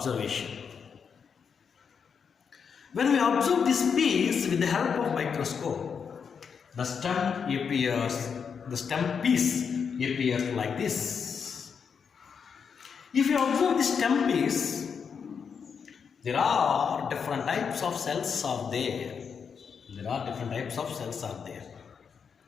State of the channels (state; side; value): quieter; right; 6.5 dB